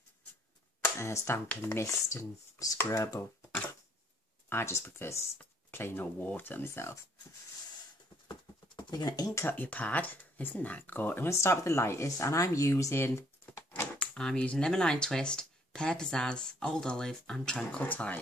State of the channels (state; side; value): normal; both; correlation 0.64